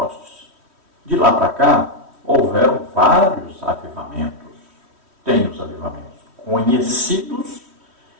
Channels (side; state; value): left; late; 3.1 ms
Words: De lá para cá, houveram vários avivamentos. Tem os avivamentos conhecidos